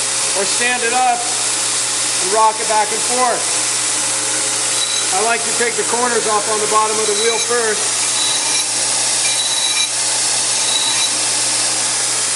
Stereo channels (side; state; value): both; identical; correlation 1.00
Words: or stand it up and rock it back and forth. I like to take the corners off on the bottom of the wheel first.